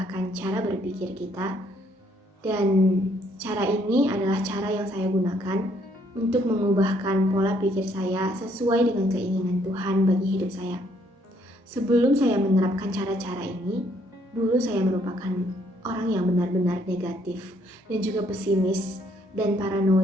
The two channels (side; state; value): both; normal; correlation 0.68